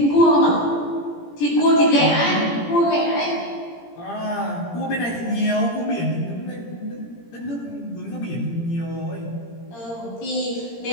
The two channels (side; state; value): right; late; 17 ms